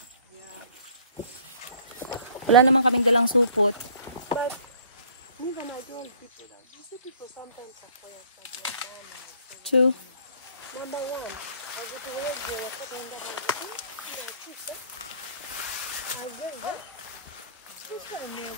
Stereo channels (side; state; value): both; inverted; correlation -0.55